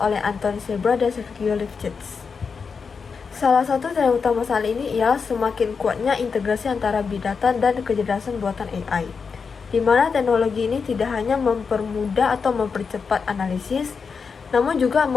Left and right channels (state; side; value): quieter; right; 5.5 dB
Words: Anthony Sebra dan Sergio Lifshitz. Salah satu tren utama saat ini ialah semakin kuatnya integrasi antara Big Data dan kecerdasan buatan AI, di mana teknologi ini tidak hanya mempermudah atau mempercepat analisis, namun juga